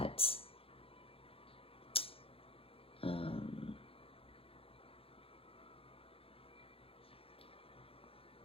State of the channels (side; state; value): right; late; 0.27 ms